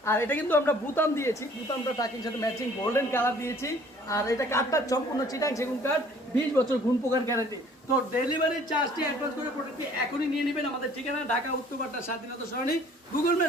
আর এটা কিন্তু আমরা বুতাম দিয়েছি, বুতামটা টাকির সাথে ম্যাচিং গোল্ডেন কালার দিয়েছি। আর এটা কাঠটা সম্পূর্ণ চিটাং সেগুন কাঠ, 20 বছর ঘুণ পোকার গ্যারান্টি। তো ডেলিভারি চার্জটি অ্যাডভান্স করে প্রোডাক্টটি এখনই নিয়ে নেবেন। আমাদের ঠিকানা ঢাকা উত্তরপাড়া স্বাধীনতা সরণি, গুগল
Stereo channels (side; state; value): both; normal; correlation 0.55